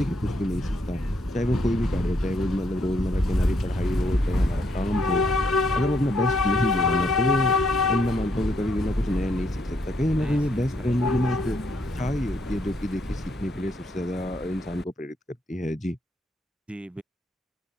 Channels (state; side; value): normal; both; correlation 0.73